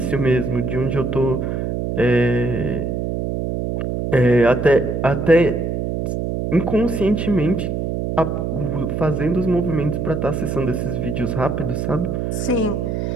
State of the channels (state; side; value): noise; right; hum, 2 dB below the sound